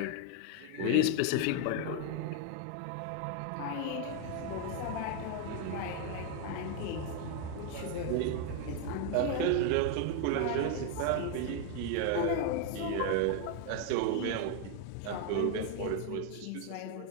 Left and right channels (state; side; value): different; both; correlation 0.01